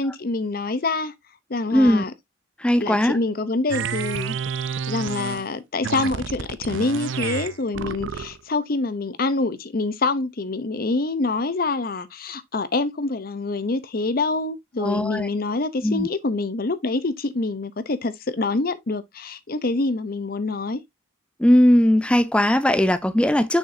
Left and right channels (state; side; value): normal; both; correlation 0.60